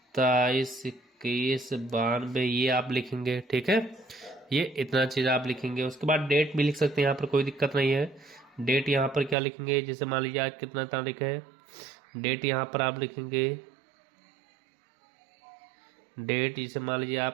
ये आप लिखेंगे, ठीक है। ये इतना चीज आप लिखेंगे। उसके बाद डेट भी लिख सकते हैं, यहाँ पर कोई दिक्कत नहीं है। डेट यहाँ पर क्या लिखेंगे, जैसे मान लीजिए आज कितना तारीख है, डेट यहाँ पर आप लिखेंगे, डेट जैसे मान लीजिए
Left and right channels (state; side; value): drops out; left; at 9.3 s